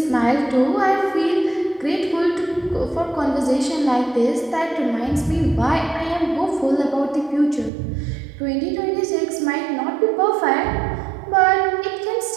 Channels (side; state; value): left; drops out; at 7.7 s